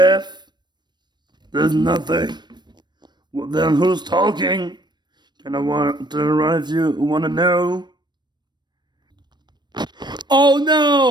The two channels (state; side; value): late; left; 0.21 ms